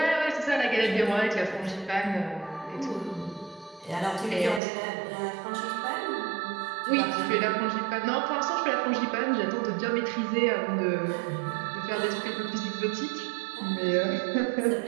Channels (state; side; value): drops out; left; at 4.6 s